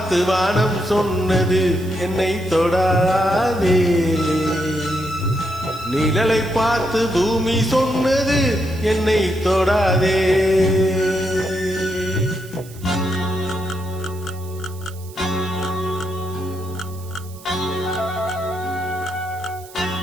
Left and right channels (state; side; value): noise; right; hiss, 21 dB below the sound